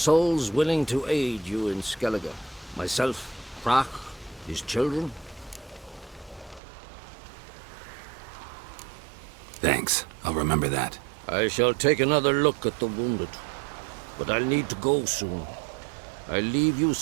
willing to aid you in Skellige. Myself, Prach, his children. Thanks. I'll remember that. I shall take another look at the wounded. But I'll need to go soon. I'll leave you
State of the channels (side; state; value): left; drops out; at 6.6 s